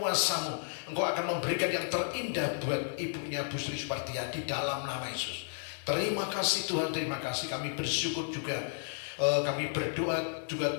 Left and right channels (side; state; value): right; silent; digital silence